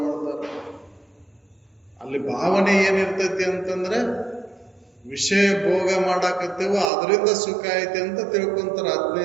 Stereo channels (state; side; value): drops out; left; at 6.9 s